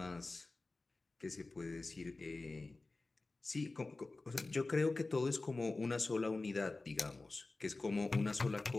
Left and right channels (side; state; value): right; quieter; 3.3 dB